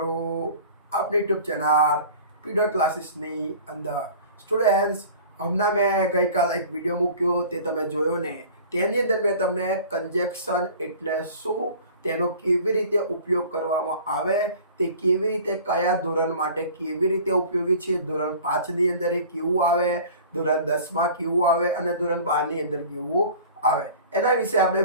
આપણી યુટ્યુબ ચેનલ પીડર ક્લાસીસની અંદર સ્ટુડન્ટ્સ હમણાં મેં ગઈકાલ એક વિડીયો મૂક્યો તે તમે જોયો ને તેની અંદર મેં તમને કન્જેક્શન એટલે શું તેનો કેવી રીતે ઉપયોગ કરવામાં આવે તે કેવી રીતે કયા ધોરણ માટે કેવી રીતે ઉપયોગી છે ધોરણ 5 ની અંદર એ કેવું આવે ધોરણ 10 માં કેવું આવે અને ધોરણ 12 ની અંદર કેવું આવે એના વિશે આપણે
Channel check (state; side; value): inverted; both; correlation -0.43